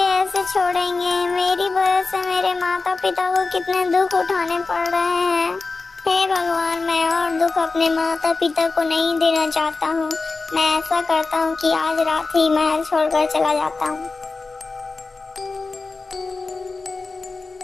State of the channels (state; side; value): quieter; right; 3.9 dB